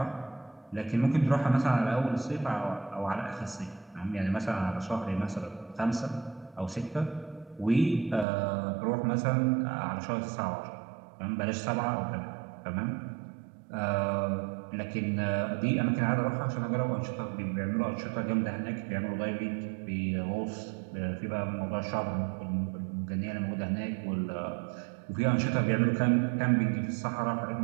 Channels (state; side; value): drops out; left; at 8.2 s